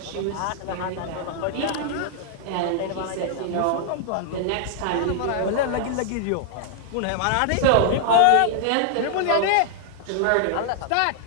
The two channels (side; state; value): both; different; correlation -0.01